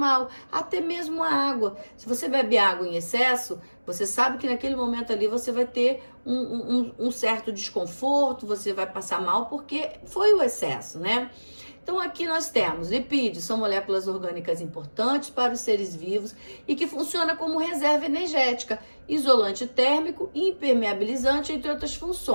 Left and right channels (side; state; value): both; inverted; correlation -1.00